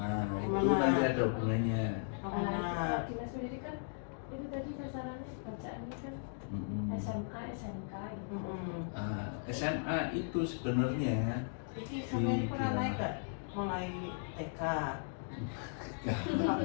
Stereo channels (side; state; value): right; silent; digital silence